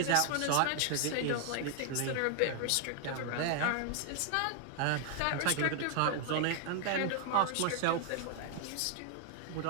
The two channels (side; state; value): both; different; correlation 0.00